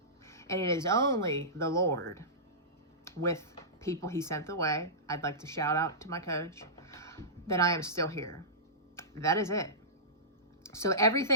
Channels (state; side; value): normal; both; correlation -0.19